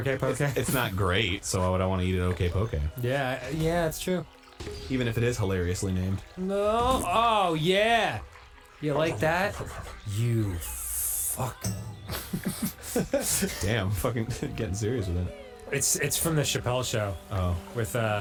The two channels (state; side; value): identical; both; correlation 1.00